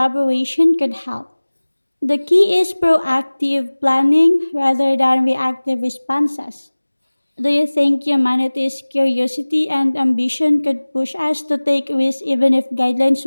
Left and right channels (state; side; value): inverted; both; correlation -1.00